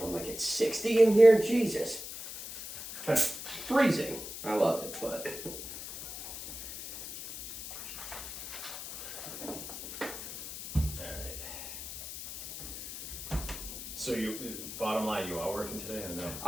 I'm like, it's 60 in here? Jesus. Freezing. I love it, but... Alright. So bottom line, you are working today or no?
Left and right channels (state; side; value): noise; left; hiss, 9 dB below the sound